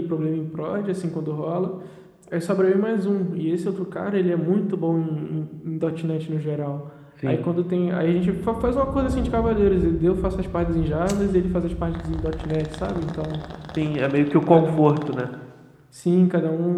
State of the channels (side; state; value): both; identical; correlation 1.00